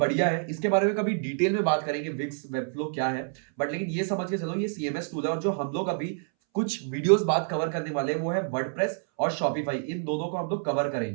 है, इसके बारे में कभी डिटेल में बात करेंगे विक्स वेबफ्लो क्या है, बट लेकिन ये समझ के चलो ये सीएमएस टूल है। और जो हम लोग अभी कुछ वीडियोस बात कवर करने वाले हैं वो है वर्डप्रेस और शॉपिफाई, इन दोनों को हम लोग कवर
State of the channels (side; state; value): left; silent; 60 dB below the other